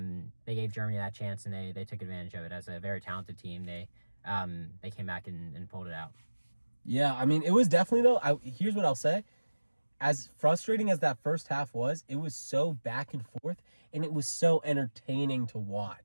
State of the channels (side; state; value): both; inverted; correlation -1.00